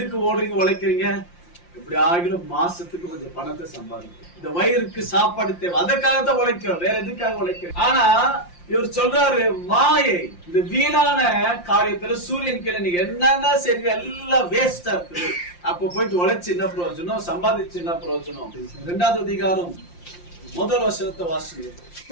ஓடுறீங்க, உழைக்கிறீங்க? இப்படி ஆகிலும் மாசத்துக்கு கொஞ்சம் பணத்தை சம்பாதிக்கும். இந்த வயிறுக்கு சாப்பாடு தேவை, அதற்காகத்தான் உழைக்கிறோம், வேற எதுக்காக உழைக்கிறோம்? ஆனா இவர் சொல்றாரு, மாயை, இந்த வீணான காரியத்துல சூரியன் கீழே நீங்க என்னன்னா சரி எல்லாம் வேஸ்டா இருக்குது. அப்ப போயிட்டு உழைச்சு என்ன பிரயோஜனம், சம்பாதிச்சு என்ன பிரயோஜனம்? 2வது அதிகாரம் 1 வசனத்தை வாசிங்க.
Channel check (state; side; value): late; right; 5.7 ms